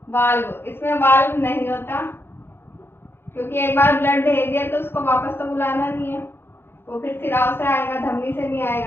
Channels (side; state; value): right; late; 0.11 ms